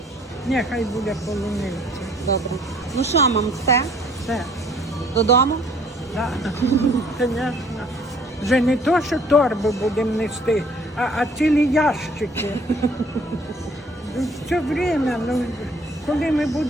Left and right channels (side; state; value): both; normal; correlation 0.58